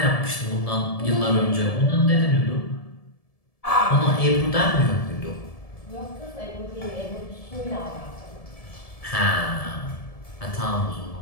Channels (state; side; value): late; right; 1.7 ms